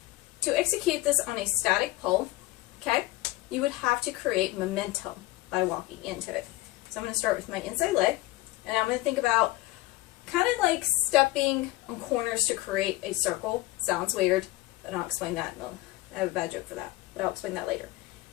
to execute this on a static pole, okay, you would have to create momentum by walking into it. So I'm going to start with my inside leg, and I'm going to think about kind of like stepping on corners to create a circle. Sounds weird, but I'll explain that. I have a bad joke for that, but I'll explain that later.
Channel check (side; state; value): right; quieter; 18.5 dB